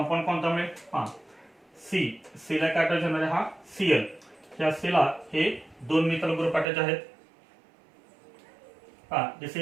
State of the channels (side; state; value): left; drops out; at 6.7 s